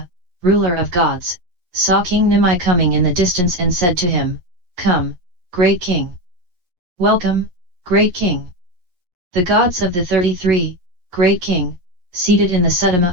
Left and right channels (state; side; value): late; left; 11 ms